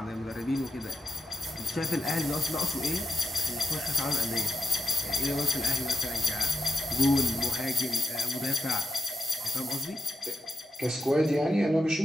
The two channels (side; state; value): both; normal; correlation 0.88